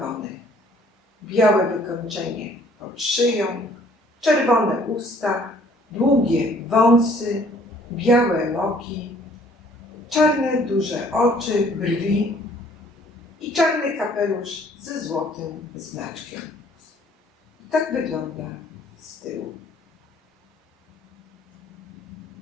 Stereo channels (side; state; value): both; normal; correlation 0.59